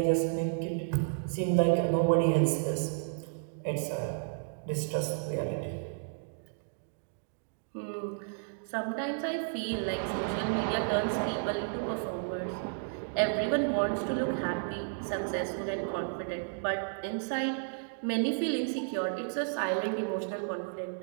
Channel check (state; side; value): silent; left; digital silence